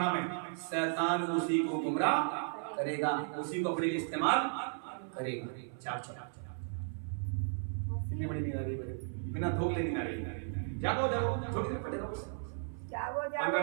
में, शैतान उसी को गुमराह करेगा, उसी को अपने लिए इस्तेमाल करेगा। कितनी बड़ी नींद आ रही है, बिना धोखे नींद आ रही है। जागो जागो, थोड़ी देर पड़े रहो,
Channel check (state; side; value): silent; left; 54 dB below the other